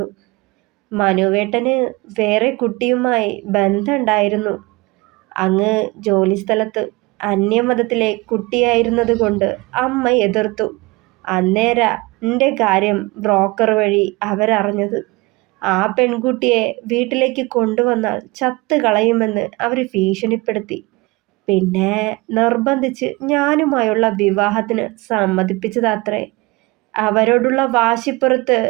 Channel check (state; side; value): quieter; left; 23.7 dB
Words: മനുവേട്ടന് വേറെ കുട്ടിയുമായി ബന്ധമുണ്ടായിരുന്നു. അങ്ങ് ജോലിസ്ഥലത്ത് അന്യമതത്തിലെ കുട്ടിയായിരുന്നത് കൊണ്ട് അമ്മ എതിർത്തു. അന്നേരാ എൻ്റെ കാര്യം ബ്രോക്കർ വഴി അവരറിഞ്ഞത്. ആ പെൺകുട്ടിയെ വീട്ടിലേക്ക് കൊണ്ടുവന്നാൽ ചത്ത് കളയുമെന്ന് അവർ ഭീഷണിപ്പെടുത്തി. പിന്നെ നിർബന്ധിച്ച് ഞാനുമായുള്ള വിവാഹത്തിന് സമ്മതിപ്പിച്ചതാത്രേ. അവരോടുള്ള വാശിപ്പുറത്ത്